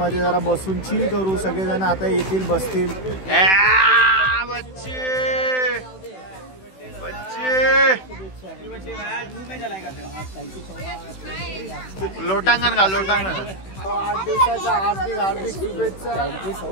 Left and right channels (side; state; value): right; late; 16 ms